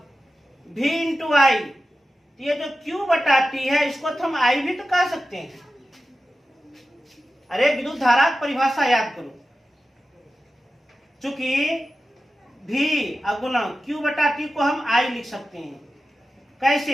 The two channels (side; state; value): both; normal; correlation 0.93